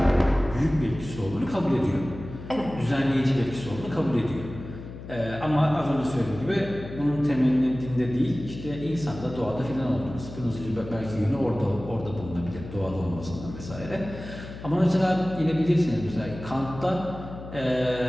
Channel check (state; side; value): noise; left; hum, 12 dB below the sound